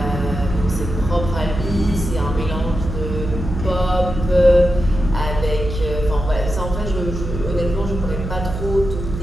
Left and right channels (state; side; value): noise; right; hum, 6 dB below the sound